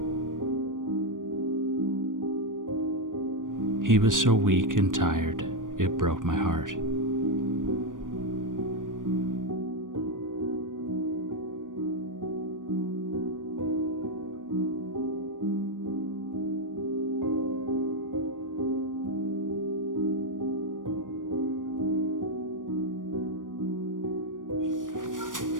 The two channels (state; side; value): late; left; 0.88 ms